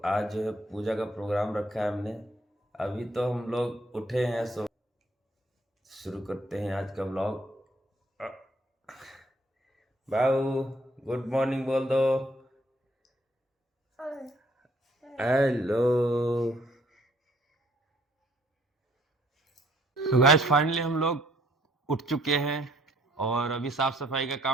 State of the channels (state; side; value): normal; both; correlation 0.64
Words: आज जो है पूजा का प्रोग्राम रखा है हमने। अभी तो हम लोग उठे हैं, सो शुरू करते हैं आज का ब्लॉग। बाबू गुड मॉर्निंग बोल दो। हेलो। तो गाइस फाइनली हम लोग उठ चुके हैं और अभी साफ सफाई का